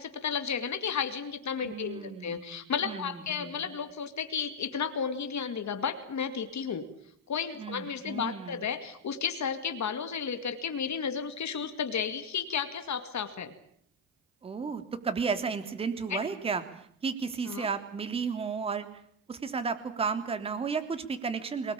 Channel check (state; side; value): normal; both; correlation 0.02